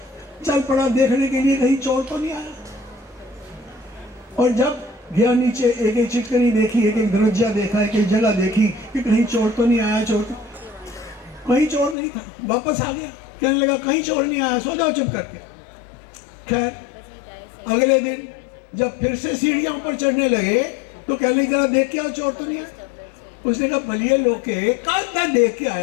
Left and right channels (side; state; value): right; drops out; at 12.0 s